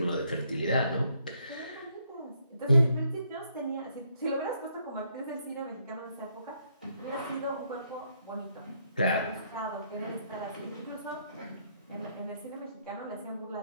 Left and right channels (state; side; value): inverted; both; correlation -0.72